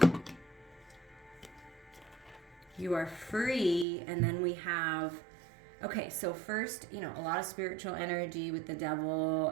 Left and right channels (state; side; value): drops out; left; at 3.9 s